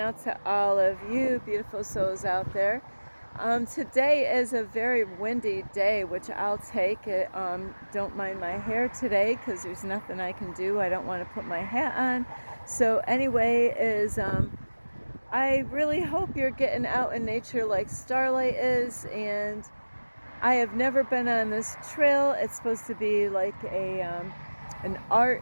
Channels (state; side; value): inverted; both; correlation -1.00